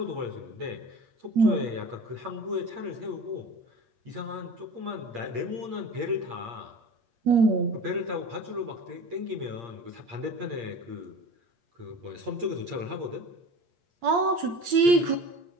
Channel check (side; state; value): left; late; 8.6 ms